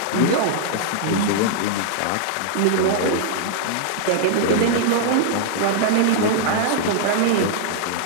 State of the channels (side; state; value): both; different; correlation -0.01